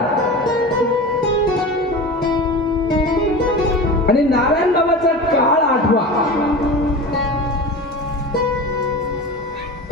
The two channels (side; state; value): both; normal; correlation 0.31